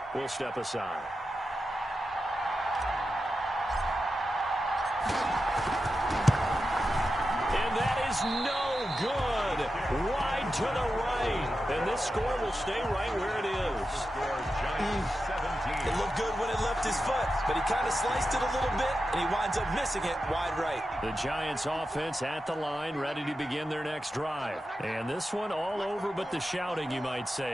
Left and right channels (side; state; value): both; normal; correlation 0.90